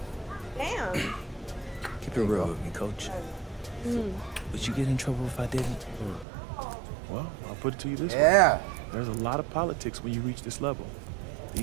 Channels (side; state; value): left; drops out; at 6.2 s